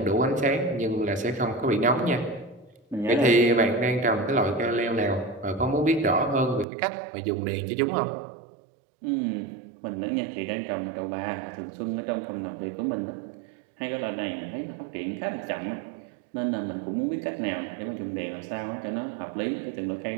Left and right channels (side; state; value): left; drops out; at 6.7 s